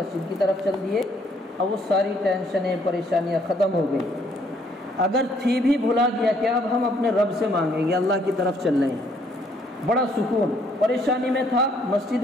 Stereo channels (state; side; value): normal; both; correlation 0.66